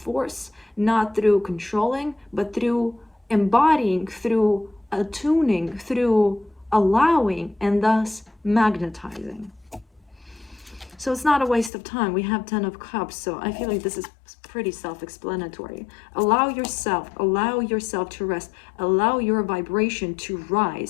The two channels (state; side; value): drops out; right; at 11.7 s